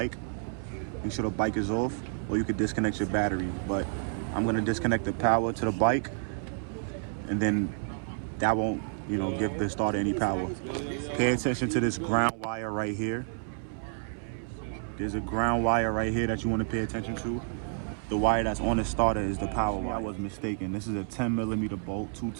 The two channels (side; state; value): left; silent; 58 dB below the other